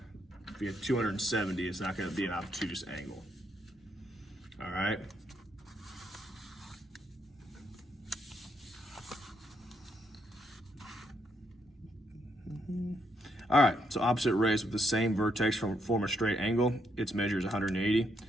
If you have 270, it's not gonna be an obtuse angle. All right. All right, so opposite rays with the same vertex form a straight angle. Its measure is 180,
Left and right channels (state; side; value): normal; both; correlation 0.76